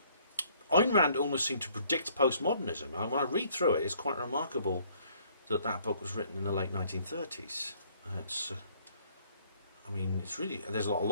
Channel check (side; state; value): both; inverted; correlation -0.62